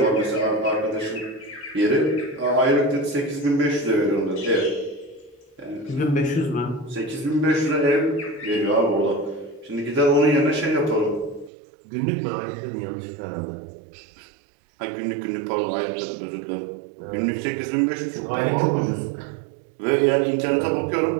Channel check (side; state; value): left; drops out; at 11.5 s